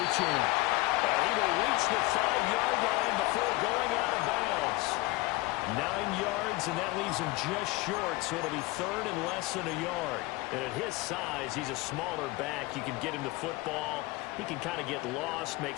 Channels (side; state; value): right; quieter; 21.1 dB